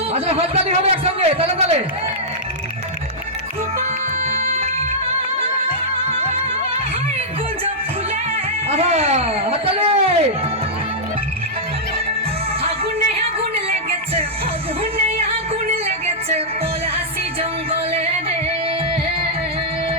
আচ্ছা হাততালি হবে একসঙ্গে, তালে তালে। হাততালি। আগুনে আগুন লেগেছে, আগুনে আগুন লেগেছে পলাশি জঙ্গলে রে।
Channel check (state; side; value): normal; both; correlation -0.10